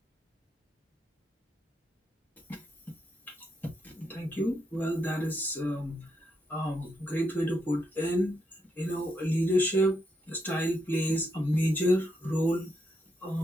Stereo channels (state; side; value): normal; both; correlation 0.80